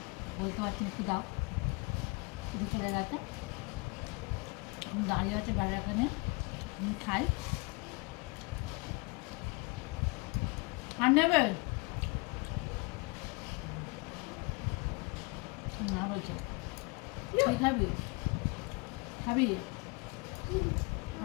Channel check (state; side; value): quieter; right; 29.2 dB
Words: বলতে পারছি না একটু দাও, শুধু চলে গেছে। দাঁড়িয়ে আছে বাড়ির এখানে, আমি খাই। আর নেবে না বলছে তুই খাবি? খাবি?